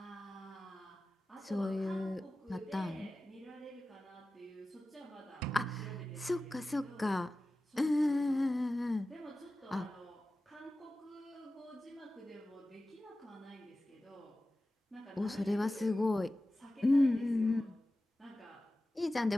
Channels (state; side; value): normal; both; correlation 0.95